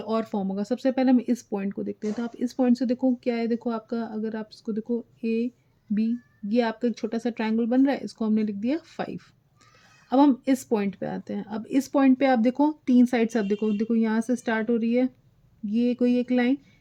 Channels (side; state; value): both; identical; correlation 1.00